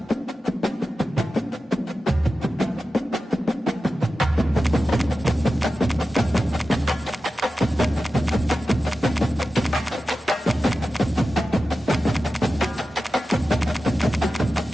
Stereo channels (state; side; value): normal; both; correlation 0.93